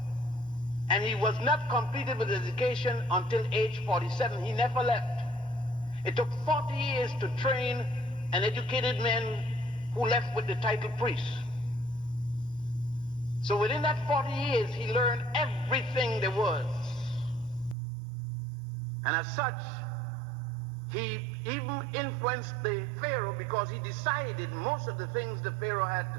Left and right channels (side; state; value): left; drops out; at 17.8 s